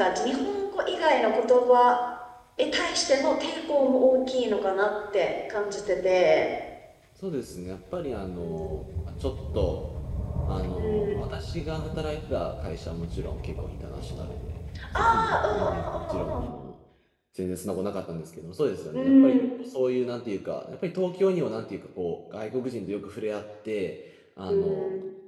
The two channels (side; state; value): both; identical; correlation 1.00